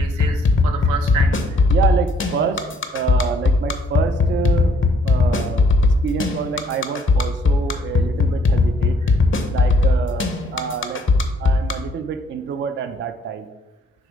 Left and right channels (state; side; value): normal; both; correlation 0.64